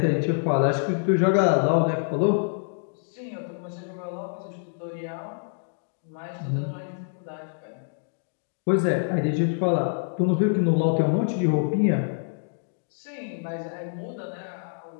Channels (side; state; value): right; silent; digital silence